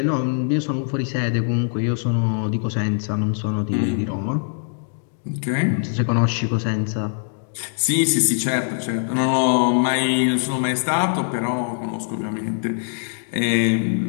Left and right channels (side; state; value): right; silent; digital silence